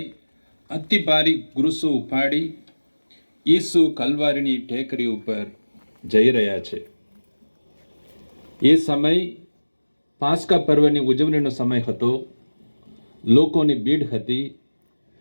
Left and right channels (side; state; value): both; inverted; correlation -1.00